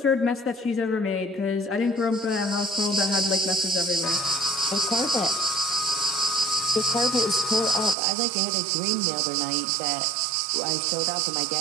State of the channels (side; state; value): left; drops out; at 8.0 s